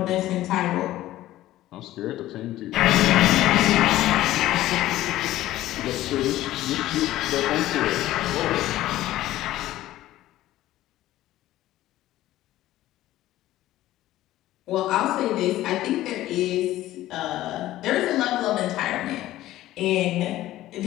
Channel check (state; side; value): quieter; right; 15.0 dB